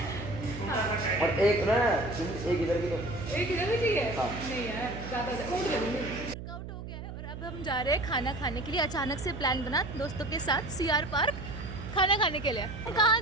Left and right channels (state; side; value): noise; right; hum, 9 dB below the sound